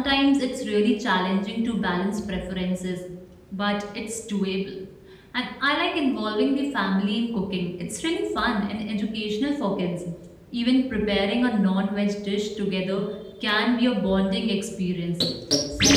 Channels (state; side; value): identical; both; correlation 1.00